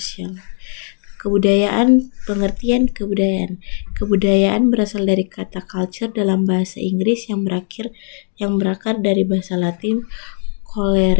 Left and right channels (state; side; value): silent; right; 55 dB below the other